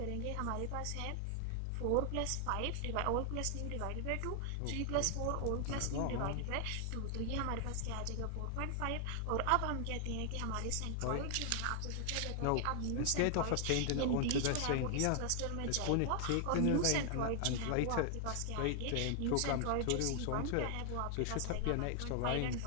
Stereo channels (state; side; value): different; both; correlation 0.00